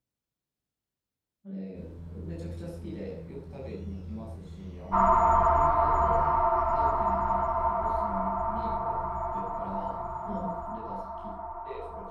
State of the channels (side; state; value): both; identical; correlation 1.00